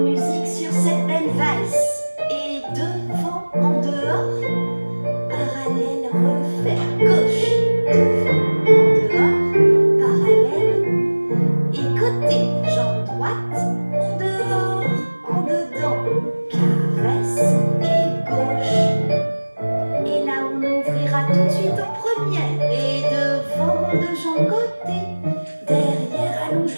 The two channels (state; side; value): inverted; both; correlation -1.00